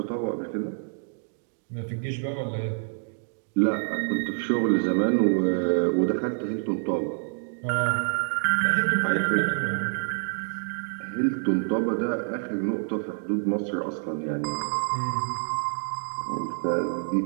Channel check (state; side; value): silent; left; digital silence